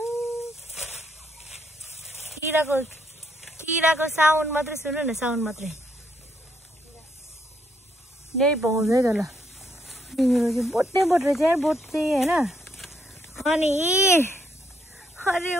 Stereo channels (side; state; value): both; normal; correlation 0.74